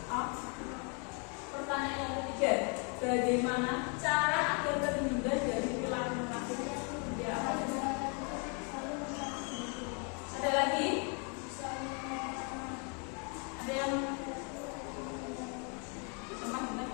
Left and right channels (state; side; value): quieter; right; 36.8 dB